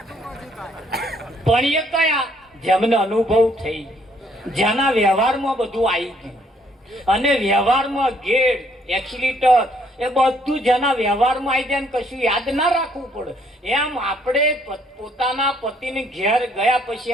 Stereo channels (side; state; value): both; normal; correlation 0.66